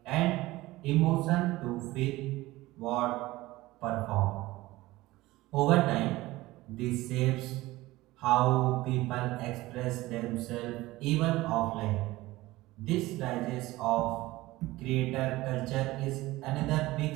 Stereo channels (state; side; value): quieter; left; 18.5 dB